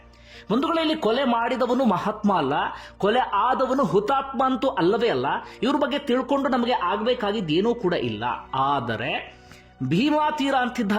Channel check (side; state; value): both; identical; correlation 1.00